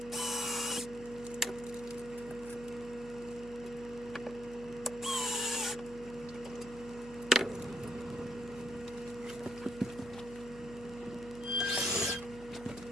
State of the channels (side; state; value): left; noise; hum, 17 dB below the sound